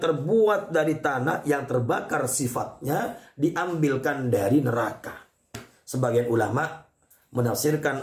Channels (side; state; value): both; identical; correlation 1.00